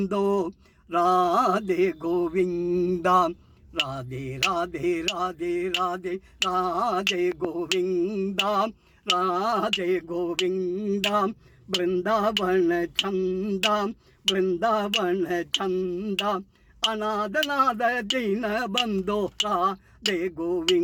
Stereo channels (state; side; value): identical; both; correlation 1.00